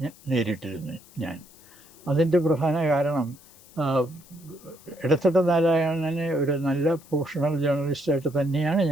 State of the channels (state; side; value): noise; left; hiss, 24 dB below the sound